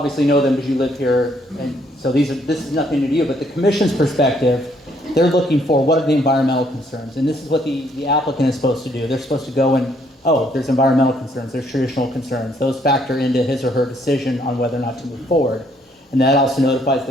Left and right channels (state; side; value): normal; both; correlation 0.68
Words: know them because you live here, and so this is nothing new to you, but the commission's perspective, they're looking for what are the environmental concerns. And this is what the applicant is supposed to do. They're supposed to go and, oh, there's environmental concerns, there's traditional concerns. Those factor into his or her decision on whether or not to move forward. And that also notifies